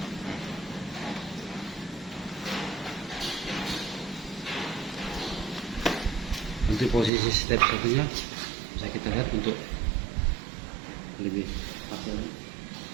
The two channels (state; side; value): drops out; left; at 7.1 s